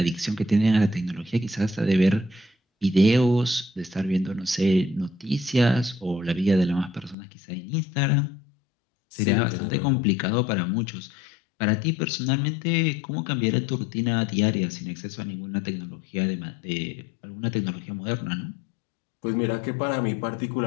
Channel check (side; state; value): right; drops out; at 7.2 s